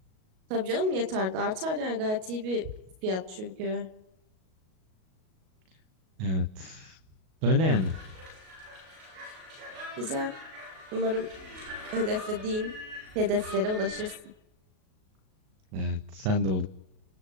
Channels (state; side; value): late; left; 37 ms